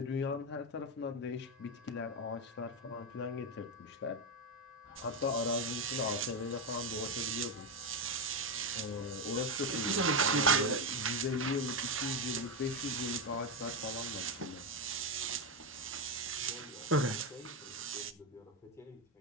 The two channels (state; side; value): normal; both; correlation 0.09